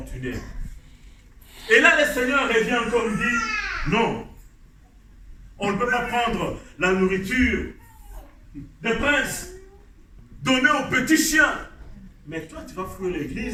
Et là, le Seigneur revient encore et dit, non, on ne peut pas prendre la nourriture des princes, donner aux petits chiens. Mais toi, tu vas fouiller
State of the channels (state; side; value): identical; both; correlation 1.00